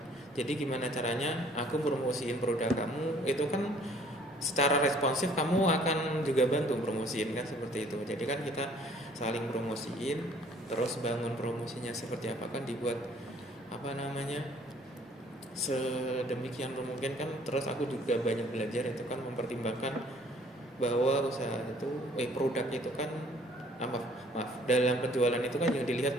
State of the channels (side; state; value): both; normal; correlation 0.57